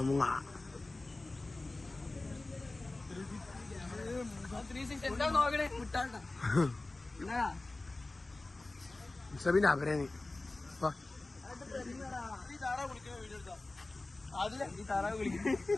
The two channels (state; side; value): quieter; right; 3.0 dB